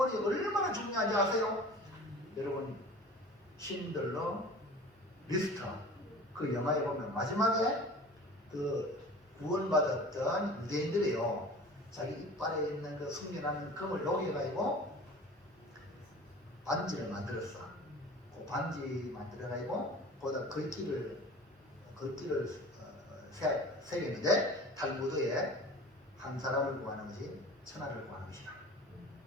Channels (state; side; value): normal; both; correlation 0.40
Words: 얼마나 중요한지 아세요? 여러분 신들러 리스터 그 영화에 보면 마지막에 그 구원받았던 유대인들이요 자기 이빨에 있는 그 숙련하는 금을 녹여가지고 반지를 만들었어. 그 반지 만들어가지고 거기다 글귀를 새겼는데 탈무드에 한 사람을 구하는 것이 천하를 구하는 것이다.